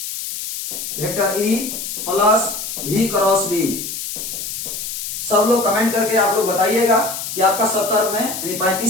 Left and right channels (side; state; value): left; noise; hiss, 6 dB below the sound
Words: vector E plus V cross B. सब लोग कमेंट करके आप लोग बताइएगा कि आपका 70 में यानी